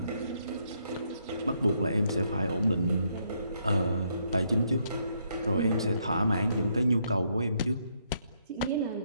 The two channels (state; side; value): inverted; both; correlation -0.74